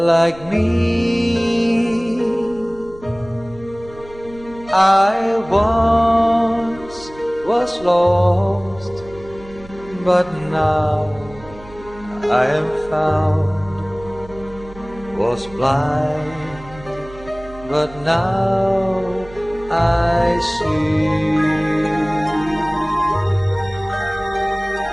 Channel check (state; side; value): noise; right; hum, 19 dB below the sound